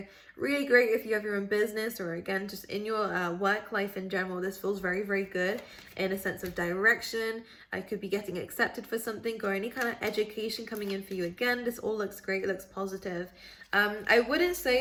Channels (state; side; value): identical; both; correlation 1.00